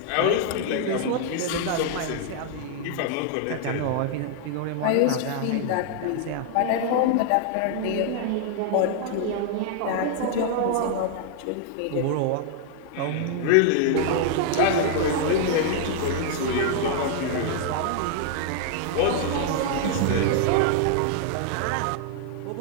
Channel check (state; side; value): different; both; correlation 0.00